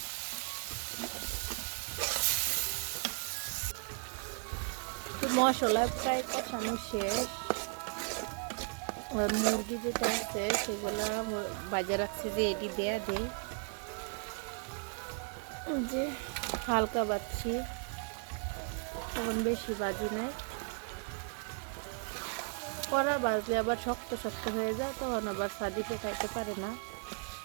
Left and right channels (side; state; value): left; quieter; 39.9 dB